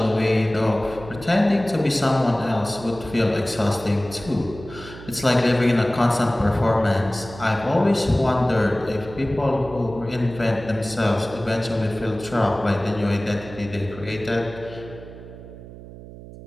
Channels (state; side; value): noise; right; hum, 16 dB below the sound